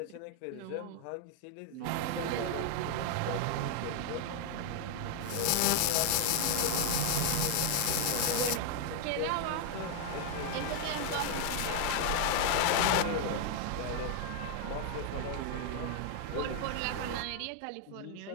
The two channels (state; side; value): different; both; correlation 0.00